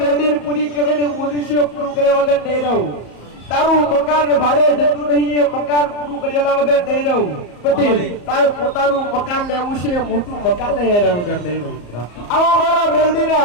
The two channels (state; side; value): late; right; 34 ms